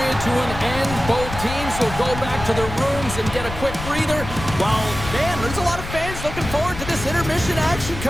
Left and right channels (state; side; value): noise; left; rumble, 9 dB below the sound